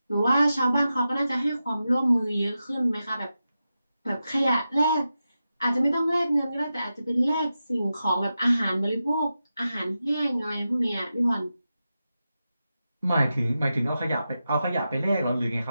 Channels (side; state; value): both; inverted; correlation -0.91